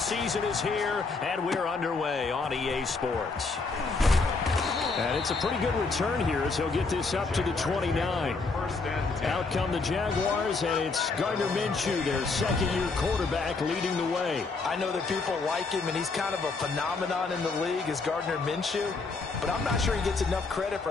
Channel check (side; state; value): right; quieter; 4.1 dB